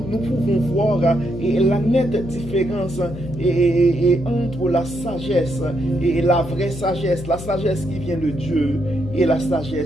pouvons voir la nette différence entre la sagesse et la vraie sagesse, la sagesse qui vient de Dieu et la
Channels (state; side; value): noise; left; hum, 11 dB below the sound